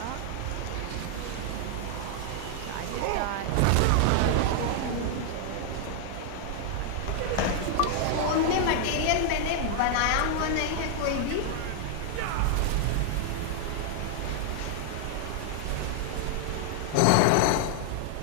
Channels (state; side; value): different; both; correlation 0.00